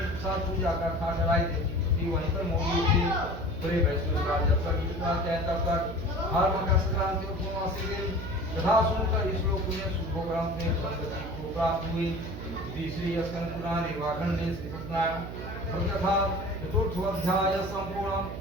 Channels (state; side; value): noise; right; hum, 9 dB below the sound